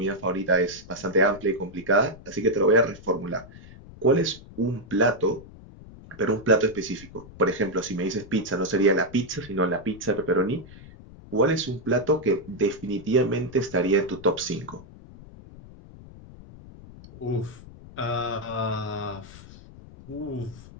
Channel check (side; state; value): left; noise; rumble, 18 dB below the sound